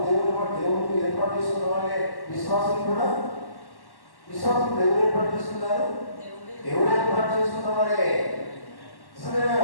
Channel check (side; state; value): right; late; 1.1 ms